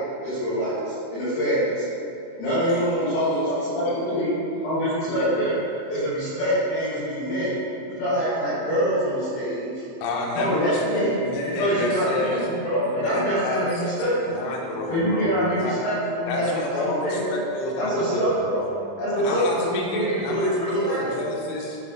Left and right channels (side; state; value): right; late; 30 ms